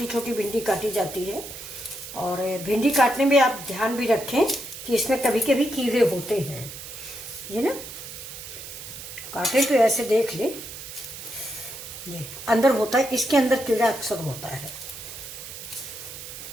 छोटी भिंडी काटी जाती है। और भिंडी काटने में आप ध्यान भी रखें कि इसमें कभी कभी कीड़े होते हैं, ये ना काटे तो ऐसे देख ले, ये अंदर होता है, इसके अंदर कीड़ा अक्सर होता है।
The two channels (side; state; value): right; noise; hiss, 11 dB below the sound